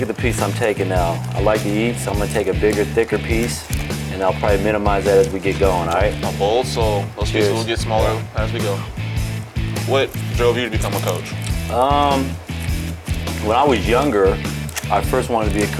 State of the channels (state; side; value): identical; both; correlation 1.00